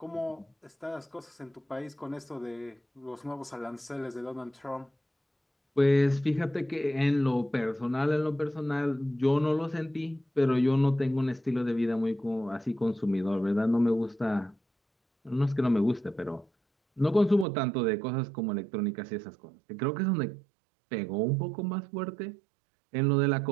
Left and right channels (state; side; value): drops out; left; at 17.4 s